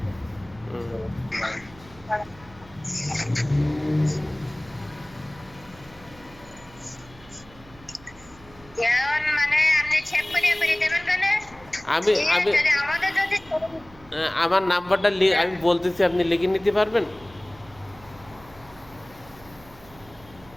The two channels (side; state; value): right; noise; hum, 23 dB below the sound